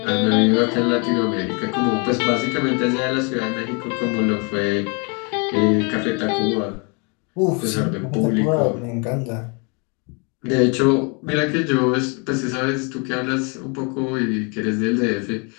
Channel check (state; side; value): quieter; right; 33.6 dB